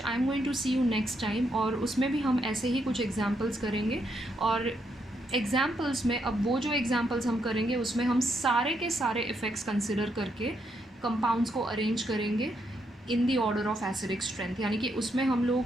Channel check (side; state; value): both; normal; correlation 0.78